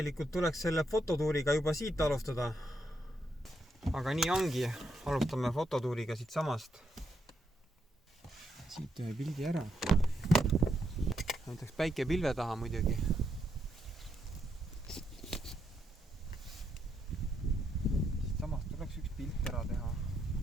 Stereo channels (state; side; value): normal; both; correlation 0.78